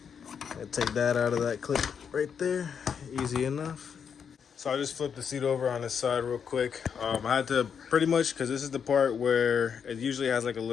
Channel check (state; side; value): quieter; right; 7.1 dB